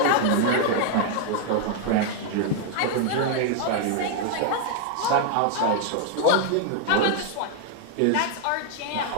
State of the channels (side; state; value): both; different; correlation 0.00